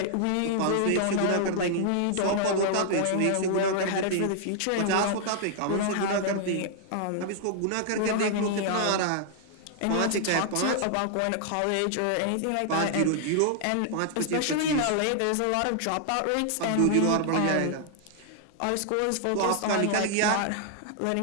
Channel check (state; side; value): different; both; correlation -0.01